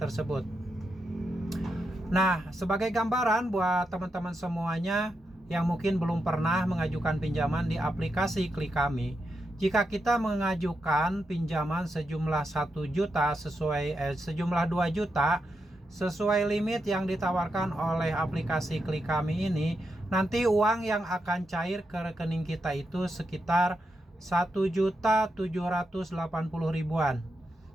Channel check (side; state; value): both; normal; correlation 0.85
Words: Nah, sebagai gambaran buat teman-teman semuanya yang mungkin belum pernah mengajukan pinjaman di aplikasi Klik Kami, jika kita mengajukan pinjaman sejumlah 1 juta sejumlah 2 juta sesuai limit yang ditawarkan oleh aplikasi Klik Kami ini, nanti uang yang akan cair ke rekening kita itu sekitar 1.780.000-an.